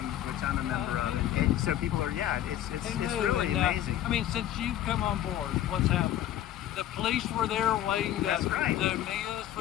a member of, and so people are, it's really amazing. I mean, since you've come on board, what's happened? The police were there waiting to meet us.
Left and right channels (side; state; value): right; quieter; 12.0 dB